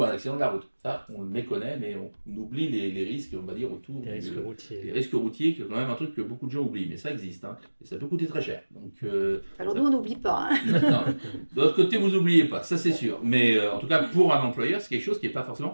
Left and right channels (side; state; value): both; inverted; correlation -1.00